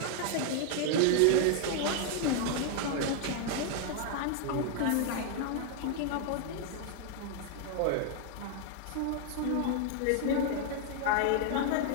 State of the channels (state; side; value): different; both; correlation 0.00